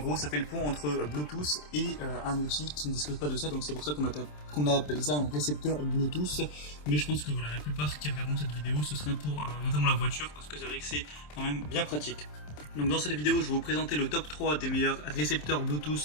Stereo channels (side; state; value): right; late; 27 ms